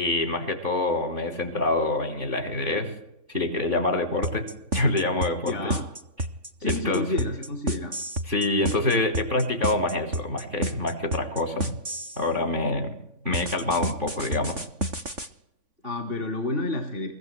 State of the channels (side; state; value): left; late; 3.5 ms